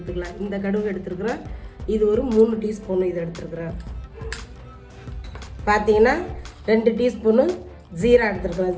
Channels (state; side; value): identical; both; correlation 1.00